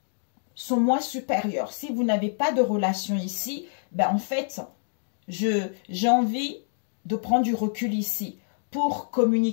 son moi supérieur. Si vous n'avez pas de relation ici, ben en fait, j'ai envie de prendre du recul ici pour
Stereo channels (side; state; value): right; silent; digital silence